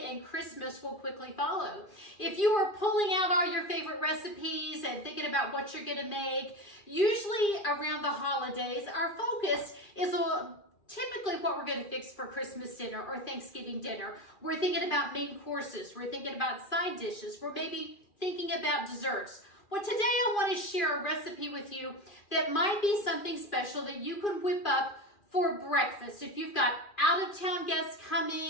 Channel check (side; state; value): right; late; 2.4 ms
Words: and Christmas will quickly follow. If you are pulling out all your favorite recipes and thinking about what you're going to make, usually around the holidays, our focus is typically what we're going to fix for Christmas dinner or Thanksgiving dinner. We're thinking about main courses. We're thinking about side dishes. We're maybe thinking about desserts. Well, today I want to share a recipe with you that might be something special that you can whip up for breakfast. If you've got out-of-town guests